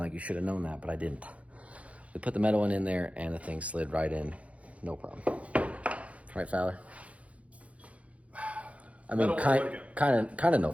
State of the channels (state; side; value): late; left; 0.065 ms